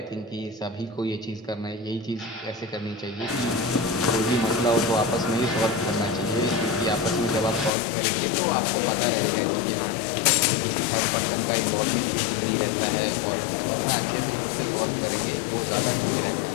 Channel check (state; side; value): drops out; right; at 7.7 s